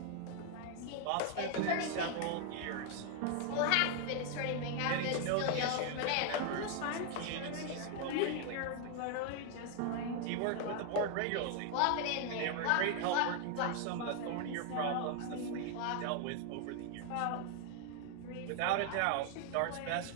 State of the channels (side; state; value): both; different; correlation 0.00